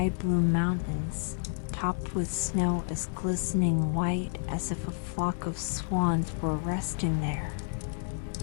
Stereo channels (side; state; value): right; silent; digital silence